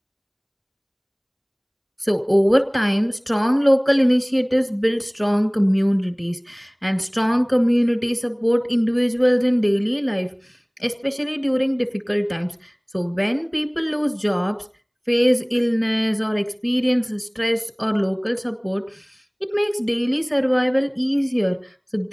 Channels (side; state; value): both; identical; correlation 1.00